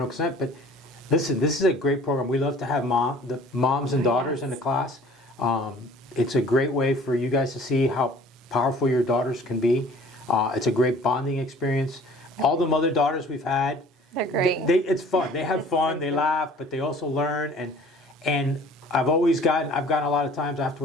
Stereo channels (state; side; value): normal; both; correlation 0.50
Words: consent. But listen, this is a great program. We love to have the moms and daughters in the class. It's a great way for you guys to see how powerful your daughters can be. It's a great bonding experience. All the mother-daughters we've had, They're great. it's fun. They have fun, they laugh, but they also learn. And I've gotten a lot of times